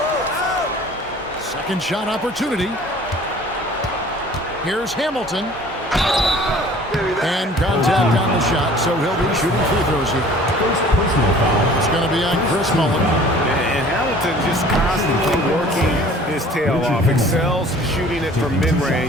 Second shot opportunity. Here's Hamilton. And contact on the shot, so he'll be shooting free throws here. It's going to be on Chris Mullen. And Hamilton just constantly working his tail off. Excels shooting it from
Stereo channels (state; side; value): normal; both; correlation 0.49